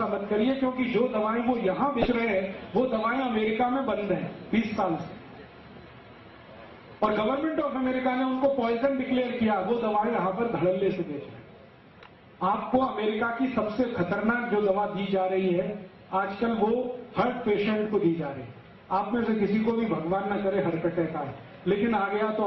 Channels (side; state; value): both; identical; correlation 1.00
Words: मत करिए, क्योंकि जो दवाएं वो यहां बेच रहे हैं वो दवाएं अमेरिका में बंद हैं 20 साल से, और गवर्नमेंट ऑफ अमेरिका ने उनको पॉइजन डिक्लेयर किया। वो दवाएं यहां पर धड़ल्ले से बेच रहे हैं। आपको अमेरिका की सबसे खतरनाक जो दवा दी जा रही है आजकल, वो हार्ट पेशेंट को दी जा रही है। आप में से किसी को भी भगवान ना करे हार्ट अटैक आए, लेकिन आ गया तो